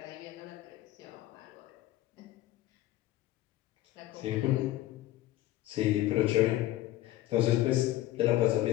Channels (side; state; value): right; quieter; 15.2 dB